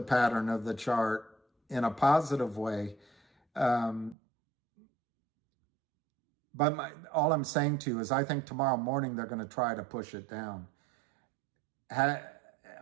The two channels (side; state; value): left; drops out; at 4.2 s